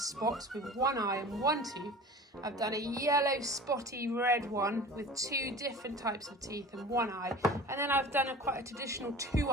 with 1 eye and 1 tooth. I've done a yellow spotty red one with 2 different types of teeth and 1 eye. And then I've done quite a traditional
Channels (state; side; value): normal; both; correlation 0.39